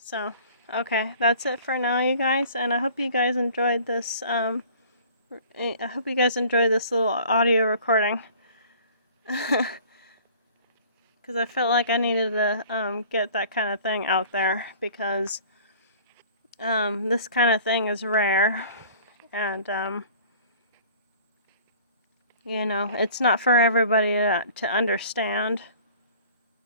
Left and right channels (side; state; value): both; inverted; correlation -0.49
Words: okay, that's it for now, you guys, and I hope you guys enjoyed this, I hope you guys enjoyed this little audio recording. Because I felt like I needed to, get that kind of thing out there, because, this kind of thing is rare, and, you know, it's not for everybody to understand.